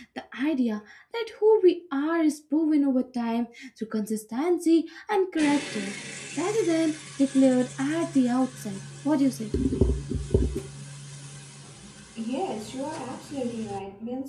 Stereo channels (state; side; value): identical; both; correlation 1.00